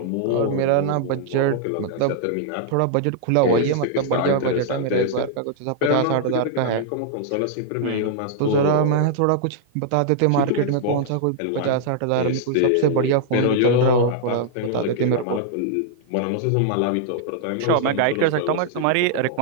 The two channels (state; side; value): different; both; correlation -0.01